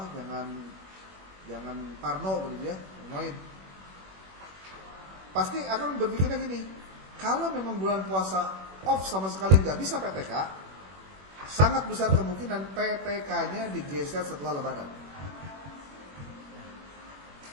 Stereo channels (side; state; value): left; late; 21 ms